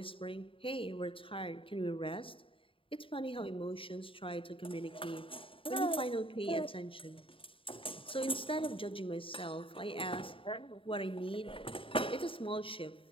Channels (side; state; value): right; late; 0.26 ms